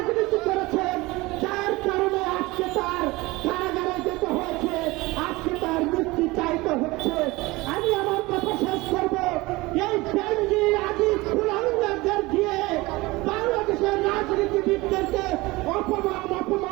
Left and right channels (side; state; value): left; quieter; 21.6 dB